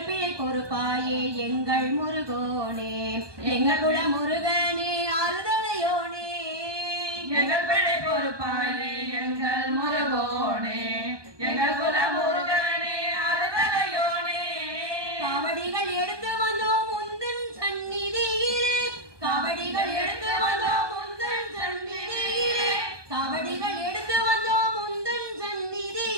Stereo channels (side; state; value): left; late; 1.2 ms